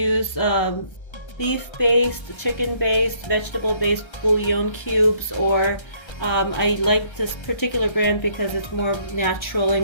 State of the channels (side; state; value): right; late; 1.3 ms